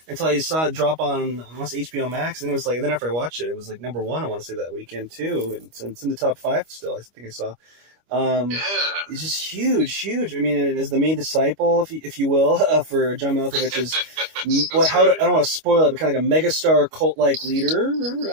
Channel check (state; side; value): late; left; 25 ms